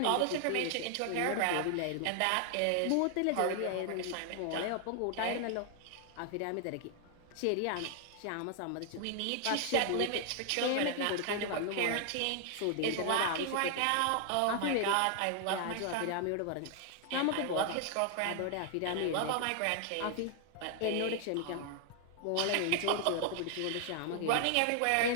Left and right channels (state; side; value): different; both; correlation 0.00